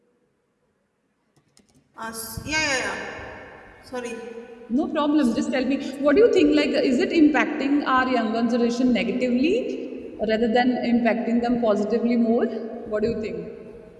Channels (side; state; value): both; identical; correlation 1.00